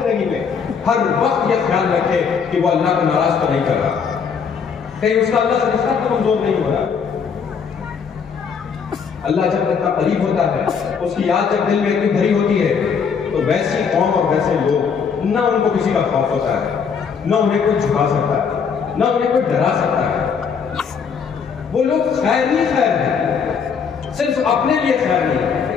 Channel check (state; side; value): quieter; right; 6.3 dB